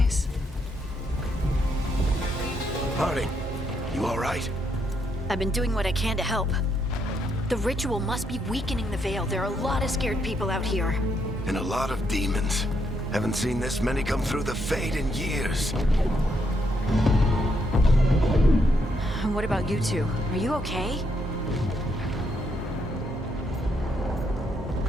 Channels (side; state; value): both; normal; correlation 0.76